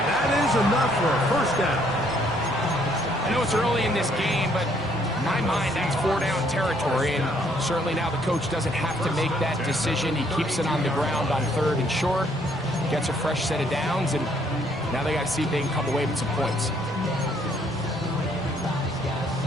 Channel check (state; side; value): normal; both; correlation 0.67